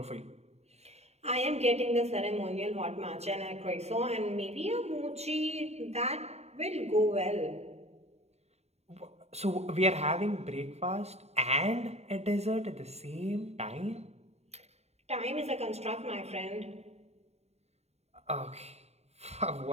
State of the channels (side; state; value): left; late; 0.31 ms